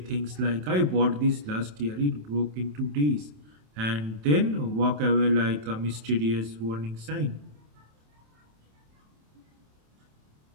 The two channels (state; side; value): late; left; 27 ms